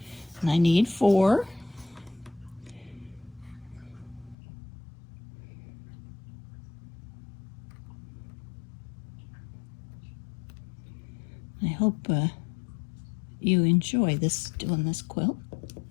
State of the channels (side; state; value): right; drops out; at 4.4 s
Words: And I need 4. I hope you enjoy doing this quilt.